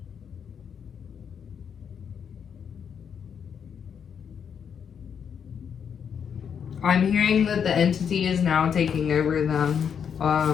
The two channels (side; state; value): right; quieter; 7.5 dB